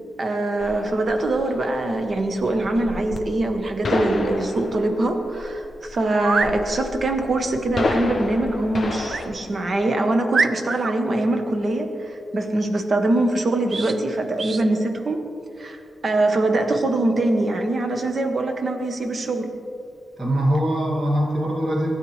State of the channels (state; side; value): normal; both; correlation 0.88